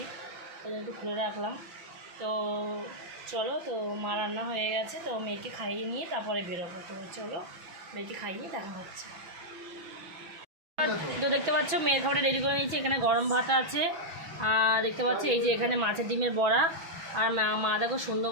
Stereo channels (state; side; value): late; left; 6.0 ms